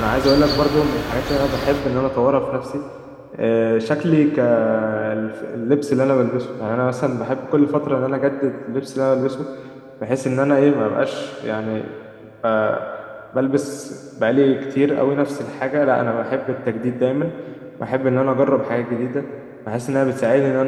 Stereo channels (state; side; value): identical; both; correlation 1.00